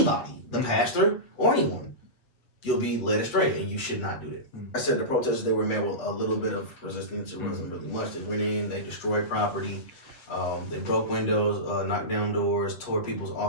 the pastor or anyone, you'll be led astray, and you should not do that. I said the protesters, they were met with a little bit of resistance. It wasn't really much. They went in, they destroyed property. They broke windows, knocked down doors, tore people's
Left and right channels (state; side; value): late; right; 7.6 ms